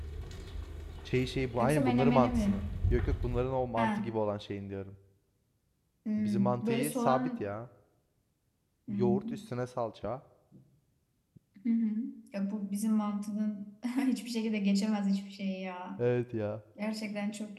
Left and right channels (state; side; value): identical; both; correlation 1.00